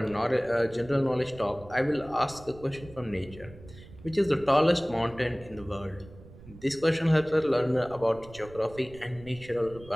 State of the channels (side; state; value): right; noise; rumble, 19 dB below the sound